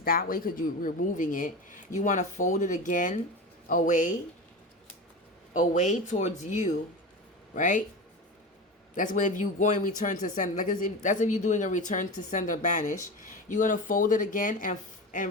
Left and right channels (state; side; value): normal; both; correlation 0.26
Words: That way, because you're removing it, you want to fold it again away towards you, right? That's when, if you go and return to sender, that's if you're doing a return to sender banish. You're gonna fold it again